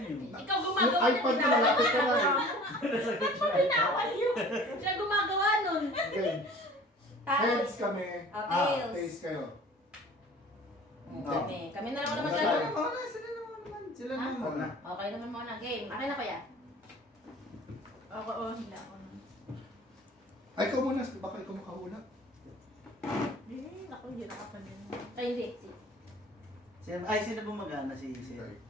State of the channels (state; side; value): normal; both; correlation 0.46